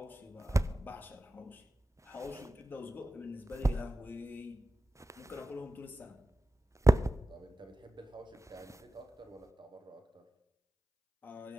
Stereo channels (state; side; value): normal; both; correlation 0.94